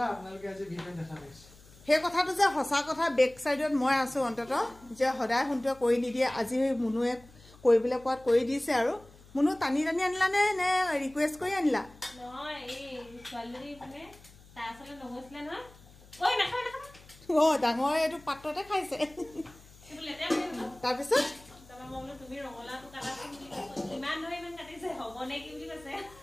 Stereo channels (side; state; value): left; noise; hum, 23 dB below the sound